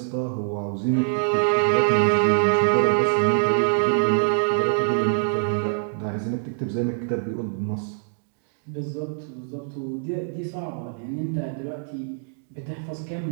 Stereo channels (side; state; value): left; silent; digital silence